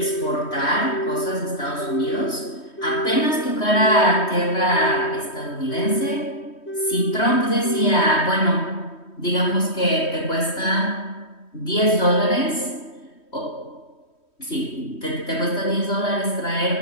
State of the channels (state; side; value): late; right; 3.1 ms